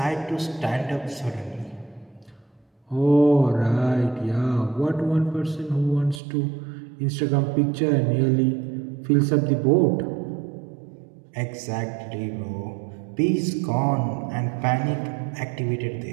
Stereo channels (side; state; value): left; drops out; at 6.2 s